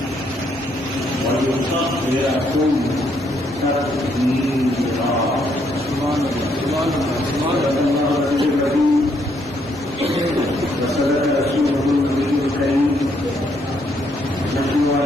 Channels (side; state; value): both; normal; correlation 0.72